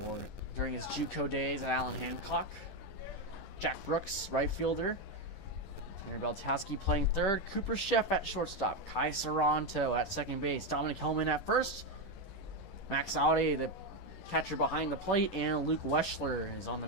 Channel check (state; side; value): late; right; 10 ms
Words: during his JUCO days at Allen Hancock. Jack Brooks, right fielder. Tanner Beltowski playing third. Cooper Sheff at shortstop. Kai Saranto at second base. Dominic Hellman at first. Max Audi, the catcher behind the plate. And Luke Weschler is on the